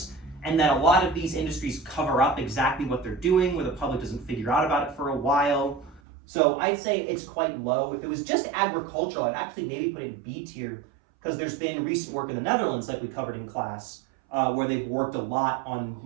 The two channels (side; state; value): left; drops out; at 6.0 s